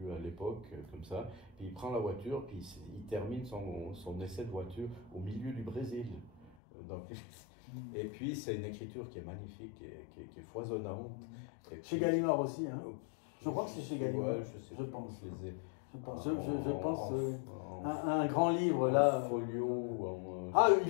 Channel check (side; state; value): right; drops out; at 6.5 s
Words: à l'époque, comme ça. Puis il prend la voiture, puis il termine son essai de voiture au milieu du Brésil. Donc, et puis c'est une écriture qui est magnifique, qui est foisonnante. Chez Gallimard aussi, hein. Je crois que c'est chez Gallimard. Ouais, je pense. Je les ai. Je pense un grand livre là. Folio.